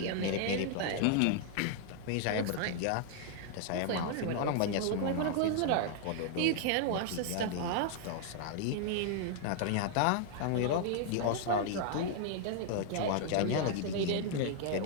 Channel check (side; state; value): both; different; correlation 0.00